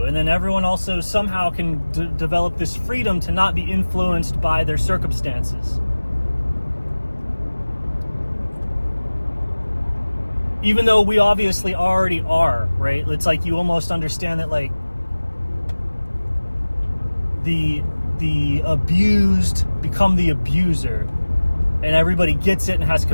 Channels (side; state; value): both; inverted; correlation -1.00